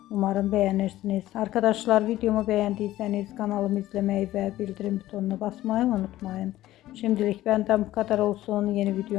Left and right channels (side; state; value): right; quieter; 15.1 dB